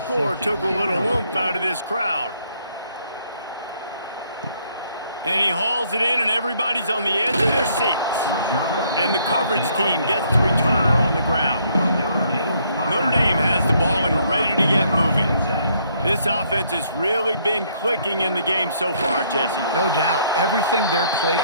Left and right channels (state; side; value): inverted; both; correlation -0.68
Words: took a little oomph out of this crowd. And he hauls it in, and everybody's on the edge of their seats. And the coverage team gets the returner on the ground. Notre Dame has the ball and ready to get moving. This offense has really been clicking in the game so far, Jesse. No doubt. Everything their play